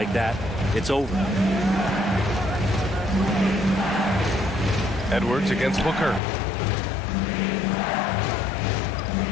that, it's over. Edwards against Booker.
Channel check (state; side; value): drops out; right; at 6.2 s